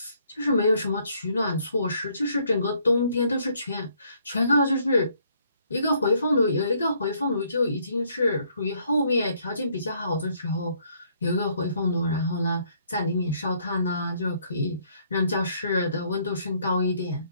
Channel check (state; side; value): inverted; both; correlation -0.67